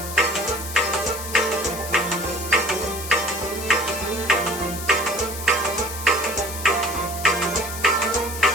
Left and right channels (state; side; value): noise; left; hiss, 9 dB below the sound